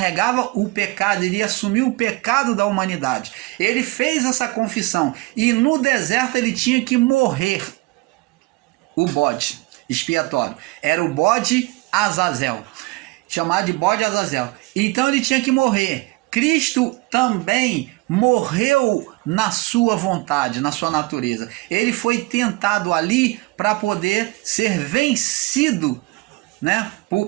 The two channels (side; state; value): left; quieter; 22.7 dB